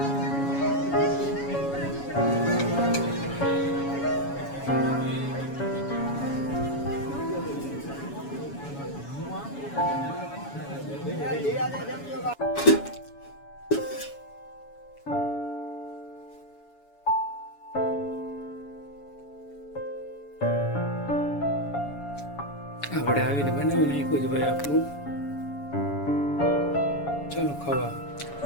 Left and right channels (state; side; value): late; right; 7.1 ms